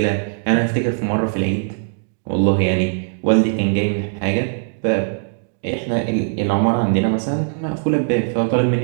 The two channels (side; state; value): left; silent; digital silence